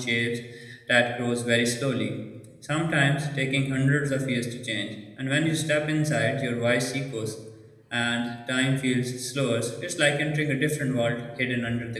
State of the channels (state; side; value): identical; both; correlation 1.00